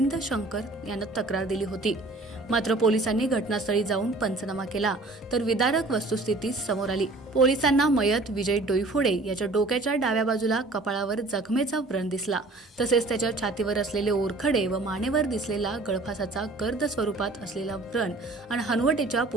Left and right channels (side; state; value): left; quieter; 3.1 dB